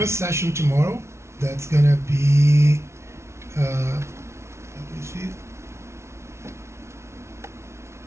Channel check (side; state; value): left; late; 0.13 ms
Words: session tomorrow, that's gonna be let me see,